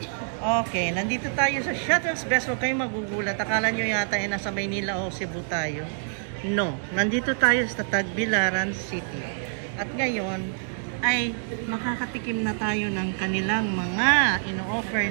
Okay, nandito tayo sa Shuttle's Best. Huwag kayong magugulat. Akala nyo yata nasa Maynila o Cebu tayo. No, nandito tayo sa Tagbilaran City. At ngayon ay makakatikim na tayo ng kanilang mga ino-offer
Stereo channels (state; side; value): silent; left; digital silence